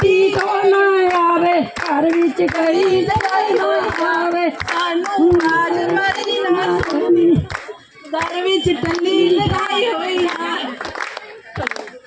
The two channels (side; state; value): both; identical; correlation 1.00